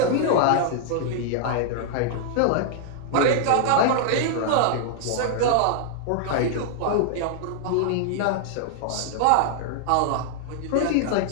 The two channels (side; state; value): both; different; correlation -0.01